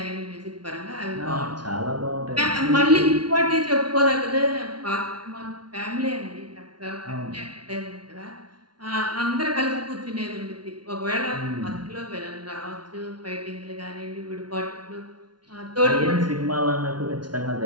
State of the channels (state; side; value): late; left; 0.70 ms